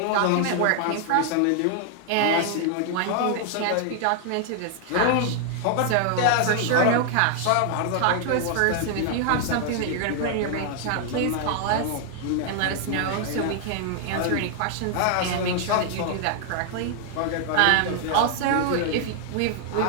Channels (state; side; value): different; both; correlation 0.00